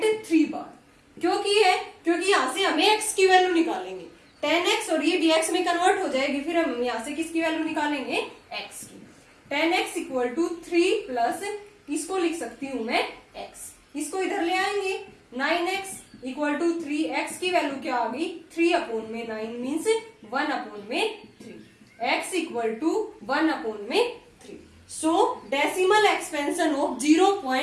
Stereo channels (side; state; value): both; identical; correlation 1.00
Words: बार। क्योंकि यहाँ से हमें x की वैल्यू निकालेंगे, 10x और ये भी x में कन्वर्ट हो जाएगी, फिर हम यहाँ से किसकी वैल्यू निकालेंगे, x की। 10x इक्वल टू 3 प्लस, इसको लिख सकती हूँ मैं x, इसको इधर ले आएंगे 9x इक्वल टू 3, x की वैल्यू क्या आ गई 3 अपॉन में 9 मीन्स 1 अपॉन में 3, x इक्वल टू 1 अपॉन में 3। So decimal expansion of